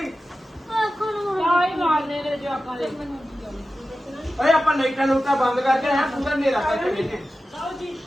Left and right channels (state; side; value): normal; both; correlation 0.94